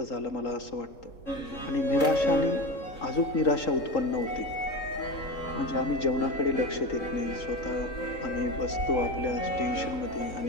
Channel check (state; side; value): late; right; 3.8 ms